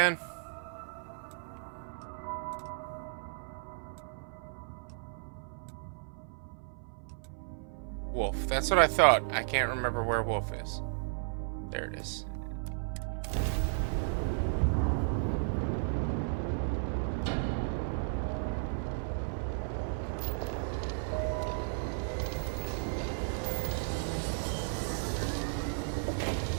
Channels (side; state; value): left; silent; 55 dB below the other